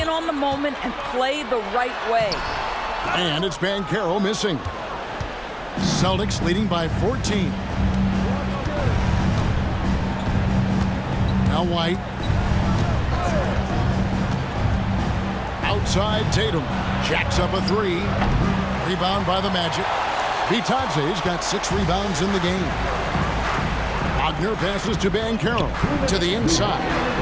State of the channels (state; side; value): identical; both; correlation 1.00